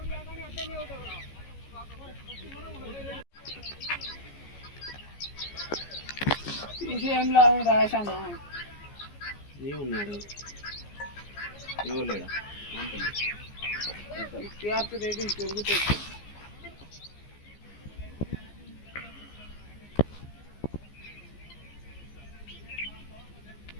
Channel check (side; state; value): right; late; 14 ms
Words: విషయంలో రాశాను ఏమున్నాడు ఎవరు టీఆర్పీ రేటింగ్ పెరుగుతుంది.